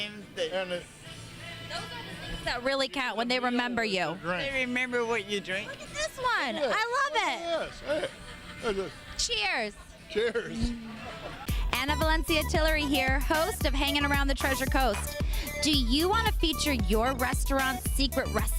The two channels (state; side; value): identical; both; correlation 1.00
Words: And Those are the things that really count when they remember you. They remember what you drink. Look at this one. I love Yes. Hey. it. Cheers. Cheers. Anna Valencia Tillery here, host of Hanging Around the Treasure Coast. Do you want to feature your restaurant's secret